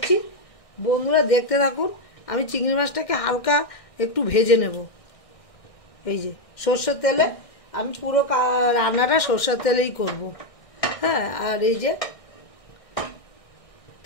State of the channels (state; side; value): late; right; 1.6 ms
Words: বন্ধুরা দেখতে থাকুন। আমি চিংড়ি মাছটাকে হালকা একটু ভেজে নেব। এই যে সর্ষের তেলে, আমি পুরো রান্নাটা সর্ষের তেলেই করব। হ্যাঁ, আর এই যে